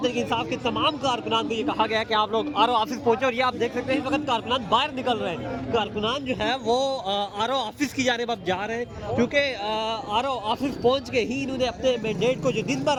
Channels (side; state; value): both; identical; correlation 1.00